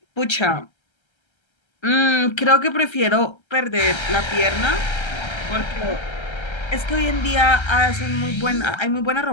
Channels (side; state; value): right; late; 1.3 ms